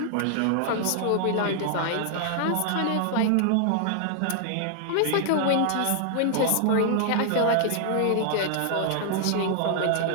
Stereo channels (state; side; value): different; both; correlation 0.00